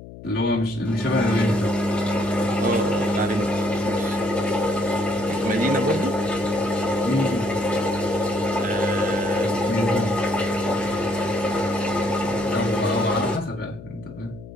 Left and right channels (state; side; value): noise; left; hum, 15 dB below the sound